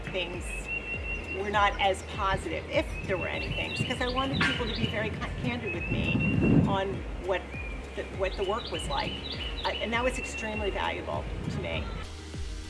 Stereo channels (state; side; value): identical; both; correlation 1.00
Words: things were not as positive, if there were any things, because I wanted people to be very candid with me on what the work was like, and that was extremely valuable to me.